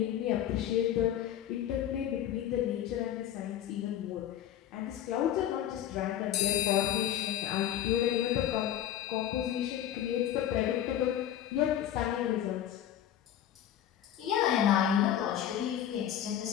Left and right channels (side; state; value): right; quieter; 11.0 dB